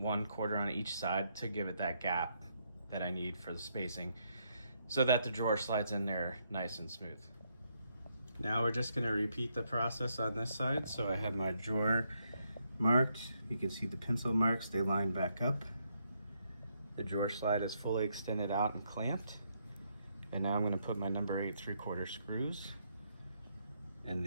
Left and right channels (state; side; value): inverted; both; correlation -0.76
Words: quarter on each side, to give it that gap that I need for the spacing, so that the drawer slides in there nice and smooth. Now we're just gonna repeat the process on this side. So I have my drawer marked. You can see the pencil marks, they line back up. The drawer slide is fully extended out and clamped. And now I'm gonna put my number 8 3/4 screws in